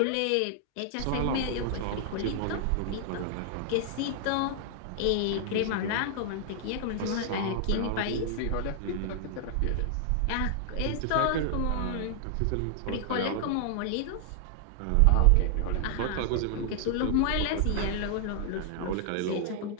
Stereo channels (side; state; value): both; different; correlation 0.00